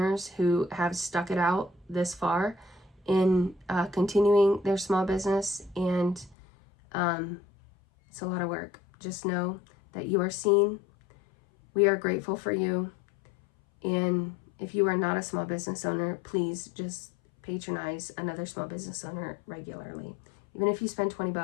who have stuck it out this far in continuing their small business. And it's a lot of work. Just know that you are seen. We are grateful for you. And if you are not a small business owner, please just patronize another small business owner regularly. Even if you spend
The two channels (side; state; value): right; drops out; at 6.4 s